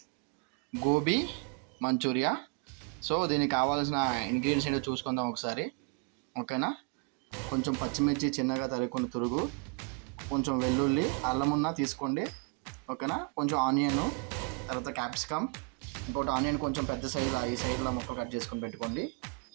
గోబీ మంచూరియా. సో దీనికి కావాల్సిన ఇంగ్రీడియంట్స్ ఏంటో చూసుకుందాం ఒకసారి. ఓకేనా? కొంచెం పచ్చిమిర్చి చిన్నగా తరుక్కున్న తురుగు, కొంచెం వెల్లుల్లి, అల్లం ఉన్న తీసుకోండి. ఓకేనా? కొంచెం ఆనియన్, తర్వాత క్యాప్సికమ్, ఇంకోటి ఆనియన్ కొంచెం పెద్ద సైజు ఈ సైడ్లో ముక్కలు కట్ చేసుకొని పెట్టుకోండి.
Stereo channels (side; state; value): left; quieter; 31.5 dB